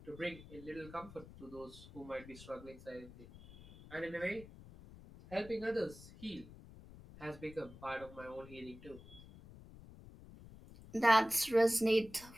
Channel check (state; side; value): noise; left; rumble, 18 dB below the sound